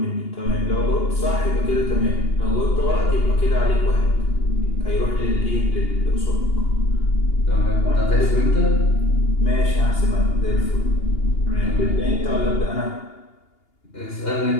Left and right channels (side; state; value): right; late; 2.8 ms